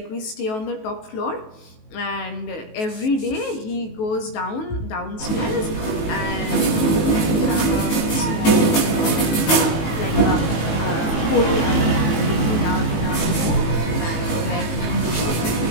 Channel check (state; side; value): late; right; 19 ms